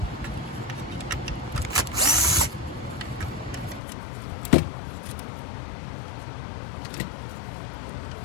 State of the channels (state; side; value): drops out; right; at 3.8 s